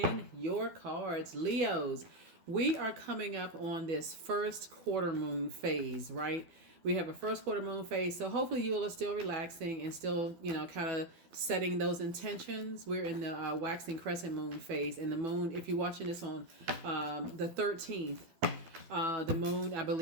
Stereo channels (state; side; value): late; left; 12 ms